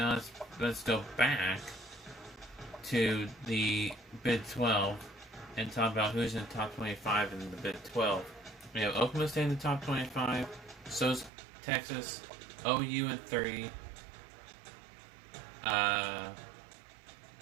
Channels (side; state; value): left; drops out; at 11.3 s